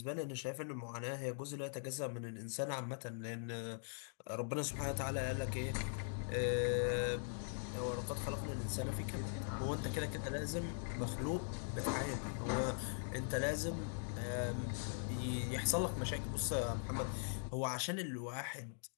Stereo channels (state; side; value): silent; right; digital silence